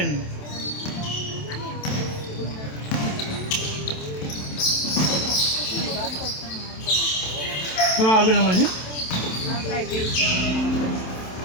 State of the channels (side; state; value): right; late; 27 ms